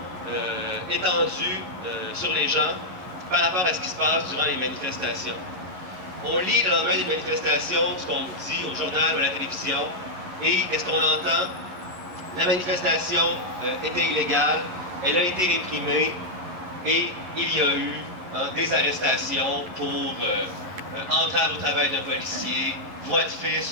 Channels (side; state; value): left; late; 11 ms